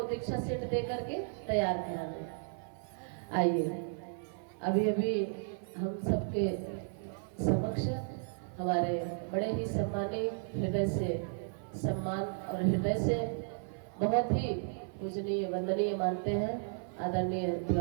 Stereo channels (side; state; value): left; silent; 55 dB below the other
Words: दीक्षा सेट दे करके तैयार करा दें। आइए, अभी अभी हम सबके समक्ष हमारे बड़े ही सम्मानित, हृदय से सम्मान और हृदय से बहुत ही पूजनीय वंदनीय मानते हैं आदरणीय